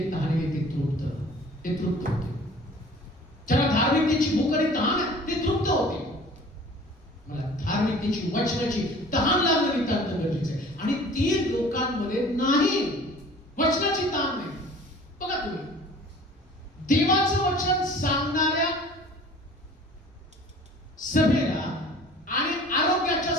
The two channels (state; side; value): normal; both; correlation 0.47